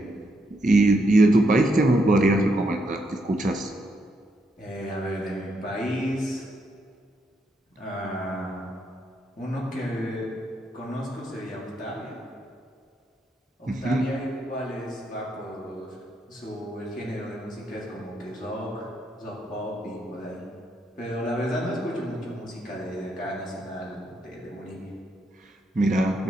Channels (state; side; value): normal; both; correlation 0.78